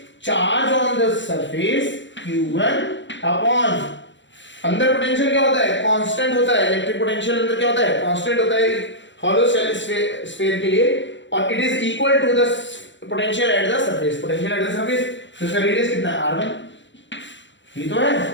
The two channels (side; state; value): right; late; 0.54 ms